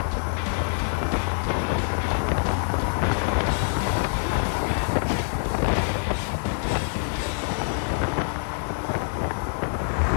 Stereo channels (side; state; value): right; silent; 61 dB below the other